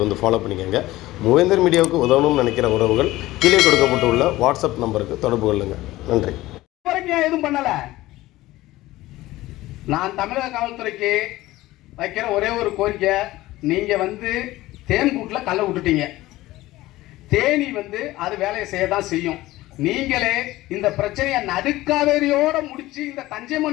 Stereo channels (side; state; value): right; quieter; 17.4 dB